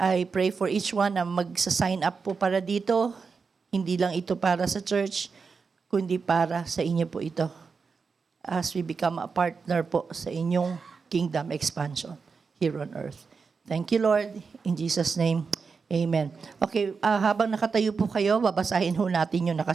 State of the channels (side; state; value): left; quieter; 5.2 dB